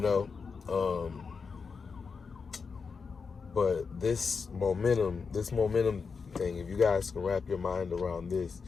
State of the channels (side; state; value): right; quieter; 5.3 dB